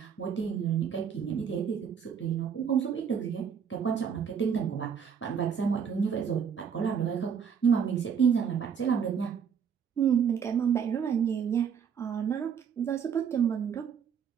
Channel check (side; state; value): left; quieter; 7.3 dB